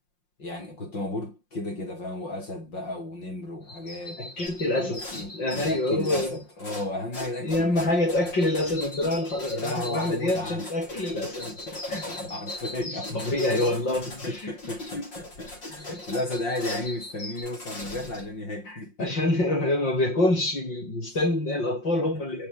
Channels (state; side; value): late; right; 5.6 ms